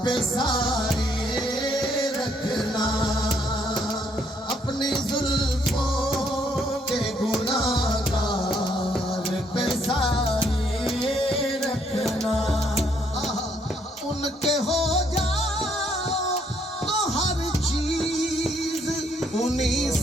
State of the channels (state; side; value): normal; both; correlation 0.70